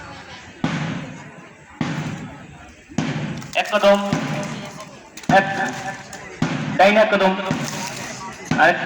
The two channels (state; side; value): identical; both; correlation 1.00